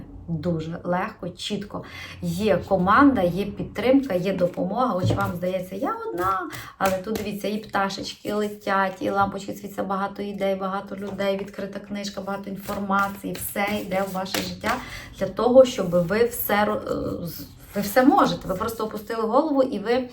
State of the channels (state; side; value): identical; both; correlation 1.00